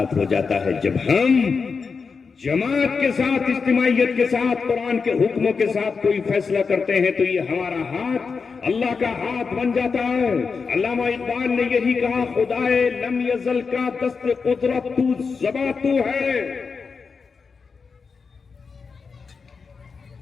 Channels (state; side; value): quieter; right; 5.1 dB